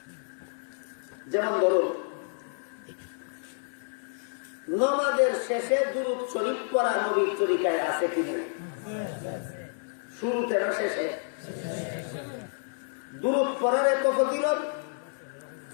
যেমন ধরুন, নামাজের শেষে দুরূদ শরীফ পড়া নবীর তরিকায় আছে কিনা? শুরুতে না শেষে? দুরূদ পড়ার এত ফজিলত।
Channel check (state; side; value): silent; right; digital silence